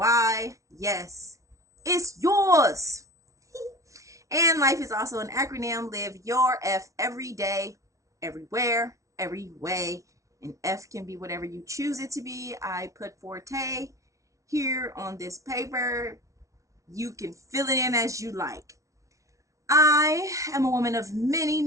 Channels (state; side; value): late; left; 0.15 ms